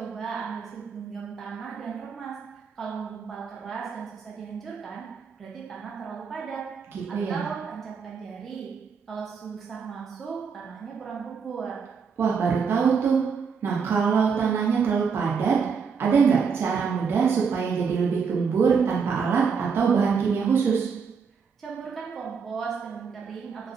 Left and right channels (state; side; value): quieter; left; 5.9 dB